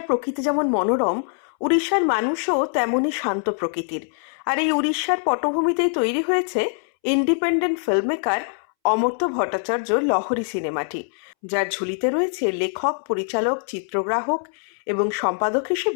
প্রকৃতি যেমন মনোরম, উড়িষ্যার মানুষও তেমনই শান্ত প্রকৃতির। আর এই উড়িষ্যার পটভূমিতেই তৈরি হয়েছে ইন্ডিপেন্ডেন্ট ফিল্মমেকার অমর্ত্য ভট্টাচার্যর লহরী সিনেমাটি, যার ঝুলিতে রয়েছে লেখক, পরিচালক, চিত্রগ্রাহক এবং সম্পাদক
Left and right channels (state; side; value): silent; right; 63 dB below the other